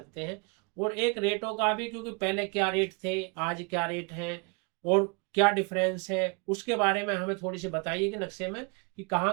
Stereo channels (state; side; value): quieter; left; 31.0 dB